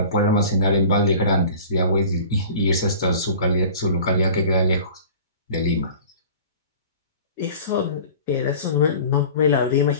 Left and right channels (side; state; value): both; inverted; correlation -0.42